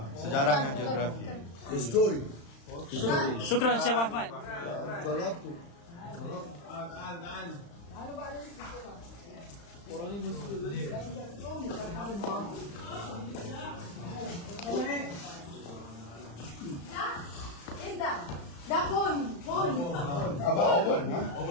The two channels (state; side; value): late; right; 35 ms